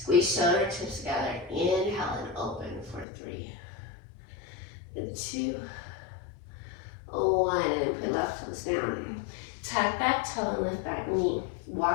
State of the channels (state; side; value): drops out; right; at 3.1 s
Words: shoulder tips together. Inhale and open for 3, and 2, 1. And then put left toes down. Tuck back toe and lift back knee.